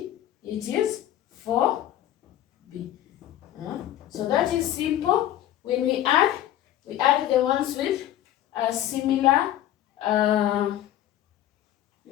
it is 4b. So that is simple. When we add the ones with similar,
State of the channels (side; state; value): right; quieter; 12.5 dB